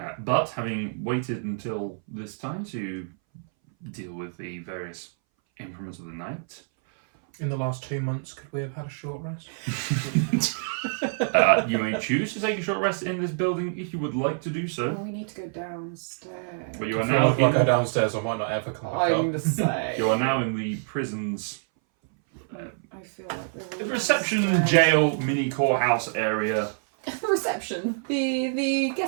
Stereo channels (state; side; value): silent; left; 60 dB below the other